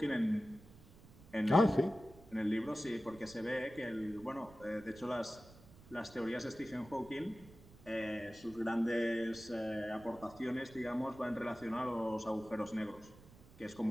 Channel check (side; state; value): right; noise; rumble, 21 dB below the sound